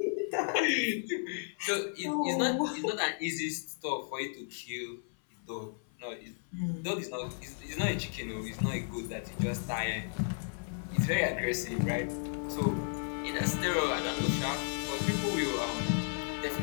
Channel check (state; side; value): silent; right; 55 dB below the other